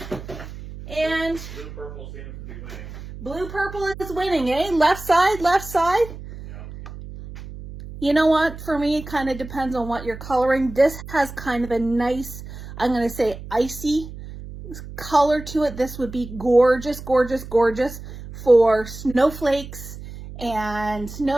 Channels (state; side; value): noise; right; hum, 13 dB below the sound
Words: And blue purple seems to be winning. Blue purple is winning, eh? Left side, left side. Yeah. You know what? For me, it kind of depends on what you're coloring. This has kind of a nice, I'm going to say icy color to it. This would be gorgeous, gorgeous, gorgeous for snowflakes and